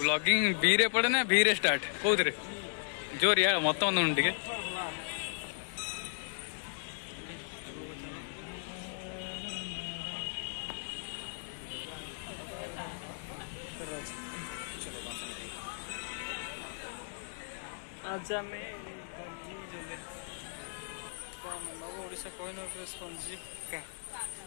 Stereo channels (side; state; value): right; silent; digital silence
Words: बी रे पड़े ना बी रे स्टार्ट कौन रे जोर या मत टे आजा में ओडिशा कोहिनूर स्पंजी का